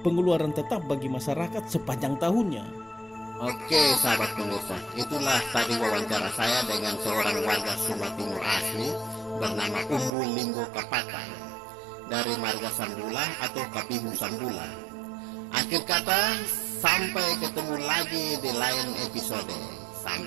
tetap bagi masyarakat sepanjang tahunnya. Oke, sahabat pemirsa, itulah tadi wawancara saya dengan seorang warga Sumba Timur asli bernama Umbu Linggo Kapaka dari marga Sambula atau Kapihu Sambula. Akhir kata, sampai ketemu lagi di lain episode.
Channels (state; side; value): drops out; left; at 10.1 s